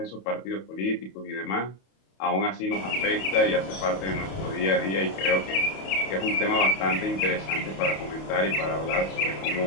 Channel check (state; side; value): late; right; 31 ms